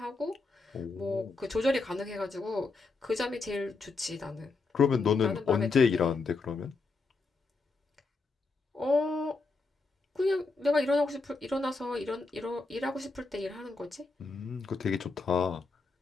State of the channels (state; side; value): quieter; right; 3.9 dB